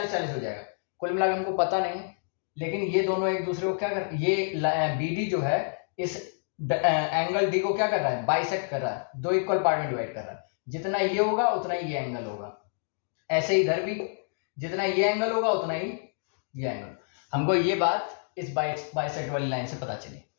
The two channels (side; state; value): right; silent; digital silence